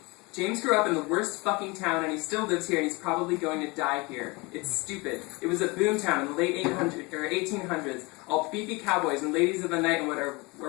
James grew up in the worst fucking town, and he still lives here, and he's probably going to die here. It's stupid. It was a boom town in the late 1800s, all beefy cowboys and ladies of the night and whatever,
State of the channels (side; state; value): right; quieter; 25.7 dB